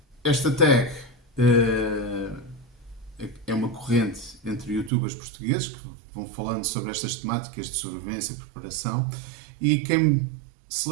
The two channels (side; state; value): left; drops out; at 4.9 s